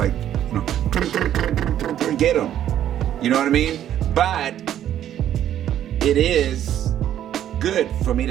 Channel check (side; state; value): left; quieter; 11.1 dB